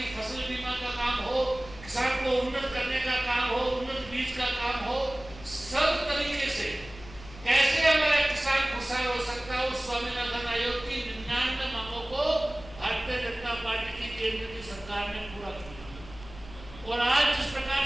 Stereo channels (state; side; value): noise; left; hum, 17 dB below the sound